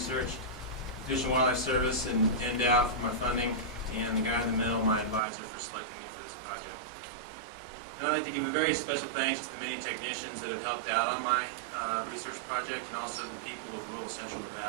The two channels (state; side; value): drops out; left; at 5.2 s